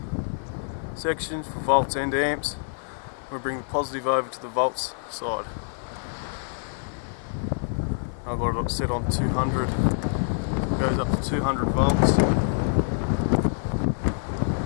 section for volts and amps. We bring the positive over to the volts side. I've got it set on 200. It goes up to 200 volts.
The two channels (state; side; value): silent; right; 58 dB below the other